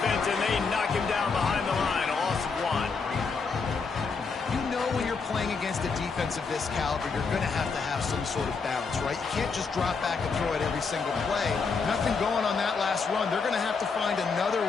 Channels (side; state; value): right; quieter; 4.9 dB